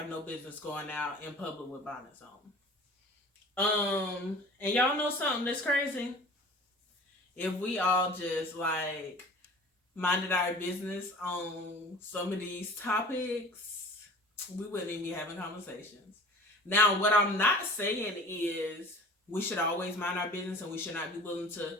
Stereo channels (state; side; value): normal; both; correlation 0.43